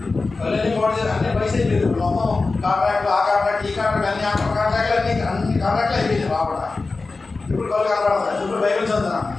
కళ్ళని బాడీ అన్ని పైసలు అయిపోయింది. మొత్తం కాంట్రాక్ట్లు ఆ కాంట్రాక్ట్ ఈ కాంట్రాక్ట్ అన్ని కాంట్రాక్ట్లు అన్ని కాంట్రాక్ట్లు అయిపోయింది రావడ. ఇప్పుడు కళ్ళు కనపడతాయి. ఇప్పుడు బైబిల్ చదువుతాను.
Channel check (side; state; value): right; quieter; 3.8 dB